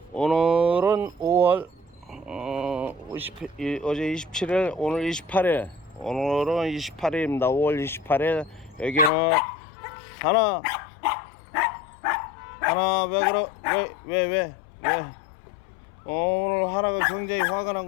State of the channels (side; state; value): right; drops out; at 9.1 s